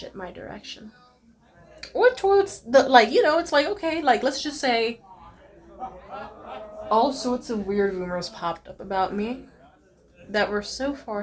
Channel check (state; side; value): identical; both; correlation 1.00